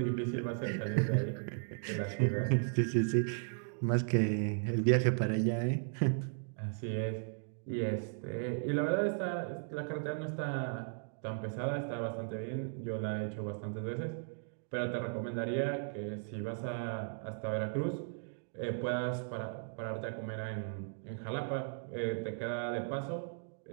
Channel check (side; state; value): left; silent; digital silence